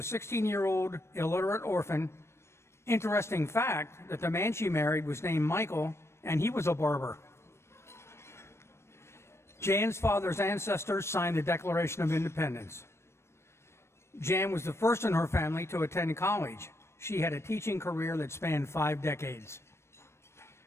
illiterate orphan. Interesting fact that the man she married was named Michael, and he was a barber. Jan's father's ancestors signed the Declaration of Independence. Jan was the first in her family to attend college. She had a teaching career that spanned 5 decades.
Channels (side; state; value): right; late; 0.13 ms